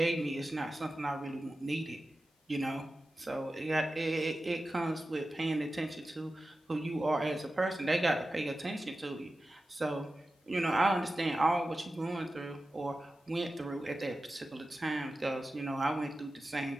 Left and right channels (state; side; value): normal; both; correlation 0.94